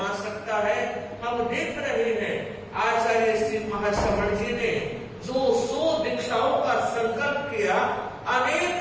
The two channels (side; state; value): both; identical; correlation 1.00